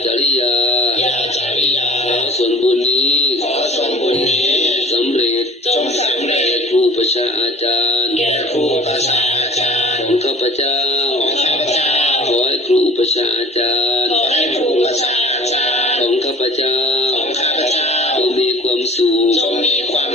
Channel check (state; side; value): normal; both; correlation 0.45